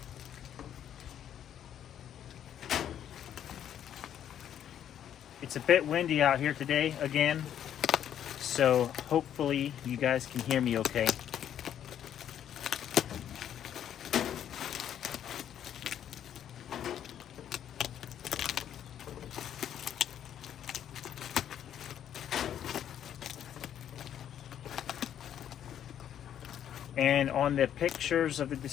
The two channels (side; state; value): right; quieter; 10.0 dB